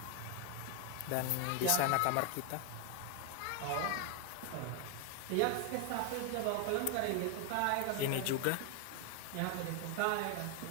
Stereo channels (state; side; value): different; both; correlation 0.01